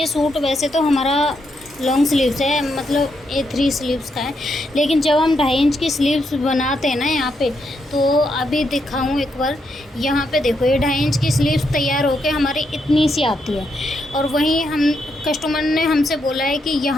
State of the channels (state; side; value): normal; both; correlation 0.80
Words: सूट वैसे तो हमारा लॉन्ग स्लीव्स है, मतलब A3 स्लीव्स का है, लेकिन जब हम 2.5 इंच की स्लीव्स बनाते हैं ना यहाँ पे, तो अभी दिखाऊँ एक बार। यहाँ पे देखो, ये 2.5 इंच की स्लीव्स तैयार होके हमारी इतनी सी आती है, और वहीं हम कस्टमर ने हमसे बोला है कि